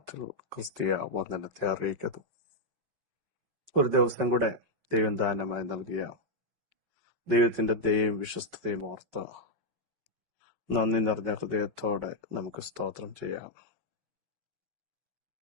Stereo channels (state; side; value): late; left; 5.3 ms